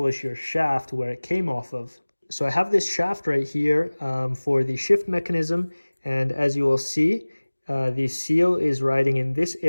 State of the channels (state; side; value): inverted; both; correlation -1.00